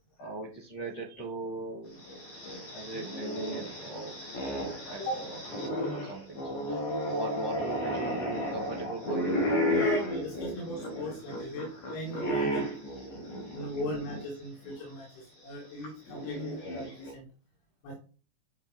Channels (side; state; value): right; late; 14 ms